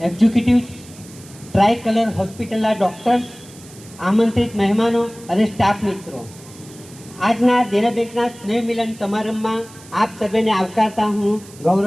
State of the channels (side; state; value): right; noise; hiss, 21 dB below the sound